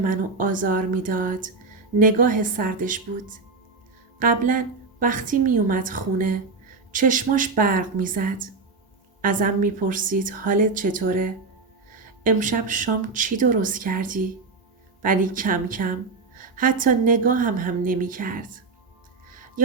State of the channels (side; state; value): left; quieter; 4.2 dB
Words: آزار می داد نگاه سردش بود. قبلا وقتی می اومد خونه چشماش برق می زد. ازم می پرسید حالت چطوره؟ امشب شام چی درست کردی؟ ولی کم کم حتی نگاهم هم نمی کرد.